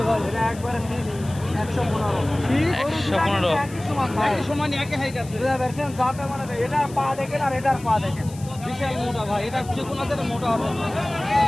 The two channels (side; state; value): left; noise; hiss, 19 dB below the sound